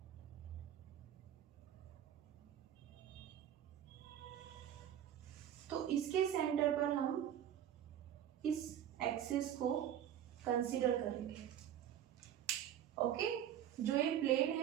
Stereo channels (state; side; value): quieter; left; 10.4 dB